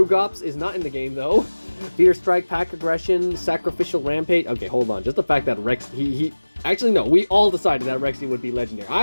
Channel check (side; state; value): both; inverted; correlation -1.00